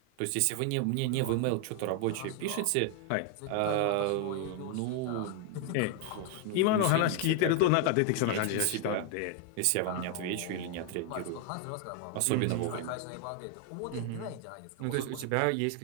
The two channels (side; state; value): both; different; correlation 0.01